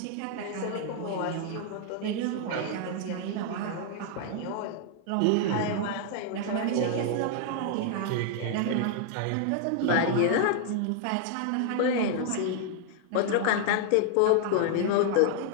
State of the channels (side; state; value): both; different; correlation 0.00